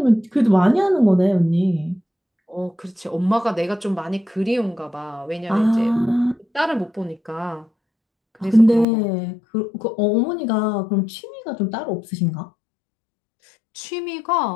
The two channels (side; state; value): right; drops out; at 8.8 s